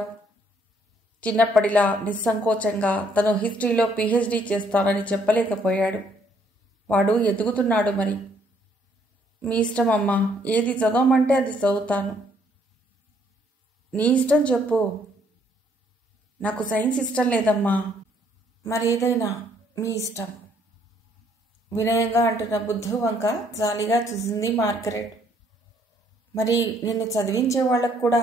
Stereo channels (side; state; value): both; normal; correlation 0.67